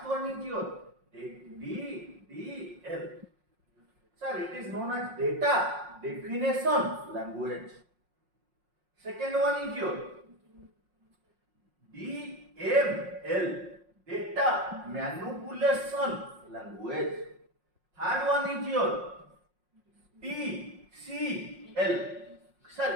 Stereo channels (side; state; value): left; late; 5.5 ms